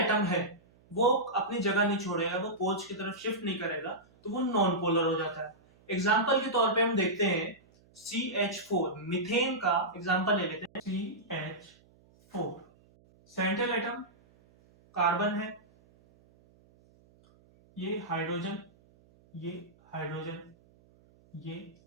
है वो अपनी जगह नहीं छोड़ेगा, वो पोल्स की तरफ शिफ्ट नहीं करेगा, तो वो नॉन पोलर हो जाता है। एग्जाम्पल के तौर पे हम देखते हैं CH4, मीथेन का एग्जाम्पल ले लेते हैं। CH4 सेंट्रल एटम कार्बन है, ये हाइड्रोजन, ये हाइड्रोजन, ये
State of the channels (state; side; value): noise; right; hum, 30 dB below the sound